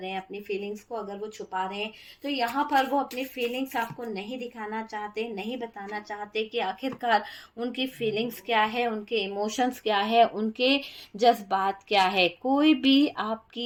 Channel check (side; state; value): both; identical; correlation 1.00